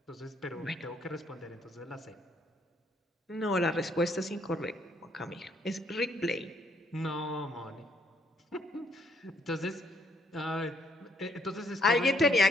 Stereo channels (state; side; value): normal; both; correlation 0.69